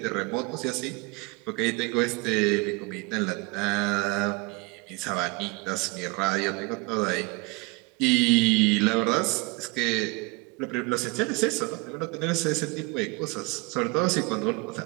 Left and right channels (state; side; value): quieter; left; 27.3 dB